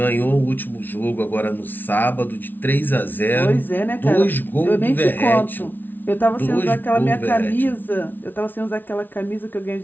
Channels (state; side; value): late; right; 0.089 ms